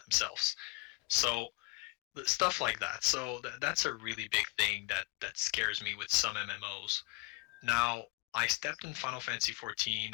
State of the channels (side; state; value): right; quieter; 24.0 dB